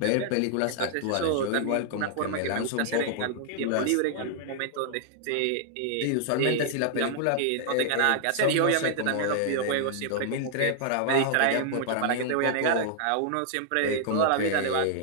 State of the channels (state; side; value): different; both; correlation -0.01